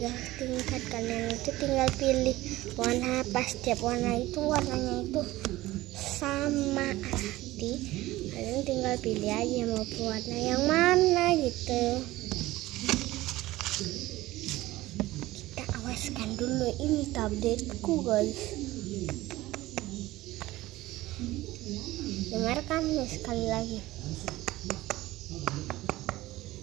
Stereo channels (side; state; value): left; quieter; 17.5 dB